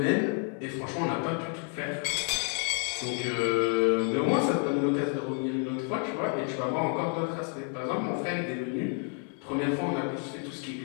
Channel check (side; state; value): right; quieter; 37.3 dB